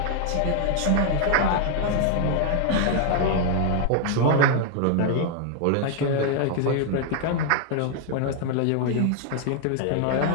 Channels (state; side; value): different; both; correlation 0.00